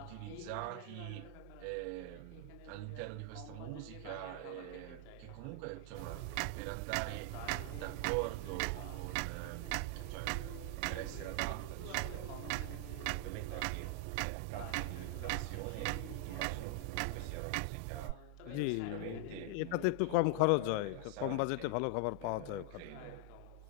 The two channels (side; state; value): both; different; correlation 0.00